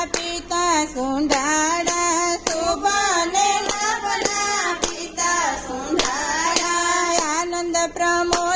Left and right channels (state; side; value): identical; both; correlation 1.00